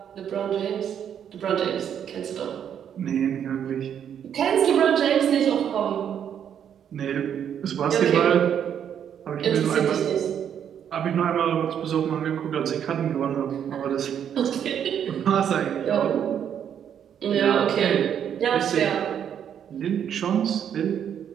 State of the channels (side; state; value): left; quieter; 8.9 dB